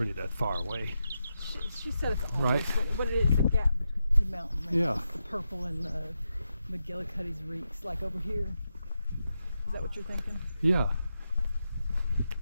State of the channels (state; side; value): inverted; both; correlation -0.87